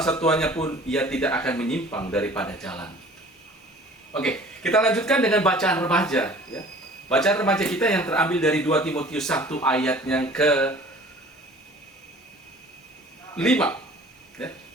tuanya pun ia tidak akan menyimpang daripada jalan. Oke, kita lanjutkan dengan bacaan remaja ya. Bacaan remaja kita yang terambil dari 2 Timotius 1 ayat yang ke-5 ya.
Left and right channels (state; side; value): normal; both; correlation 0.48